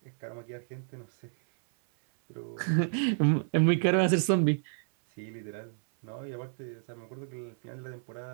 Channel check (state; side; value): silent; left; 57 dB below the other